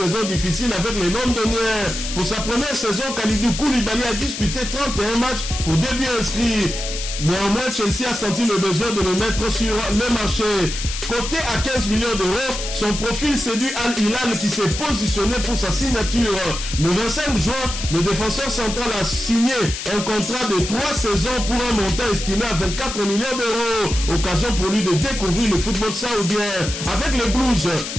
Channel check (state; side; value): noise; left; hiss, 6 dB below the sound